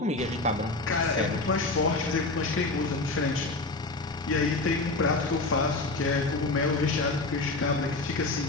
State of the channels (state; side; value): quieter; right; 3.3 dB